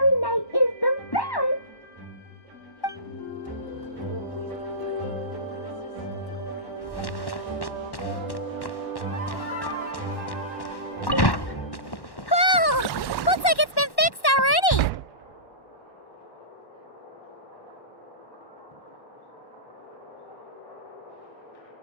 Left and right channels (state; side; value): late; right; 1.1 ms